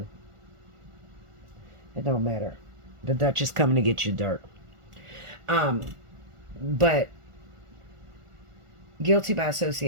It don't matter. The Dutch is coming to get you, dark. But guilty by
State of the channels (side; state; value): left; late; 1.4 ms